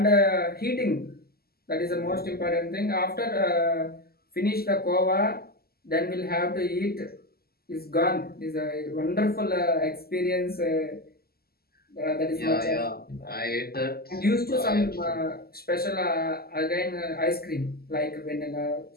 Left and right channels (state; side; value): late; right; 0.45 ms